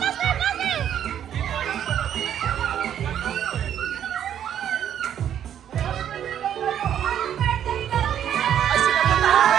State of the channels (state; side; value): quieter; left; 9.8 dB